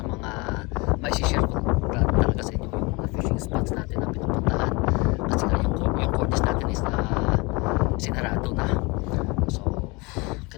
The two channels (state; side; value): quieter; right; 26.5 dB